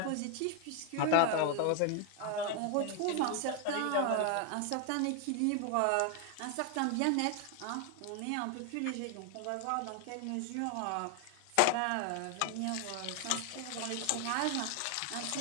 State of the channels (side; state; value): both; different; correlation 0.01